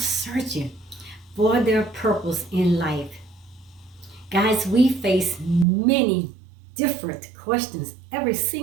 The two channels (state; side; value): drops out; left; at 5.7 s